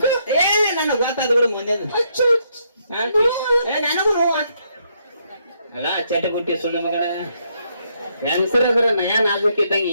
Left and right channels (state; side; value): inverted; both; correlation -0.74